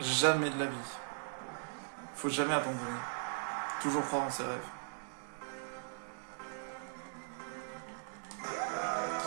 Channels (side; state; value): left; silent; digital silence